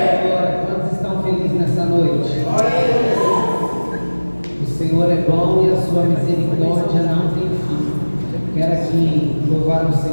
Quantos estão felizes nessa noite? O Senhor é bom e a sua misericórdia não tem fim. Quero aqui louvar o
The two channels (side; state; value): both; inverted; correlation -1.00